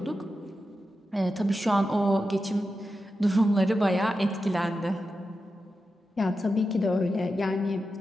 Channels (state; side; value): normal; both; correlation 0.90